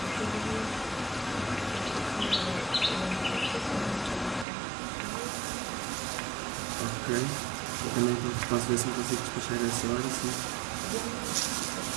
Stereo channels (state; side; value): drops out; left; at 4.5 s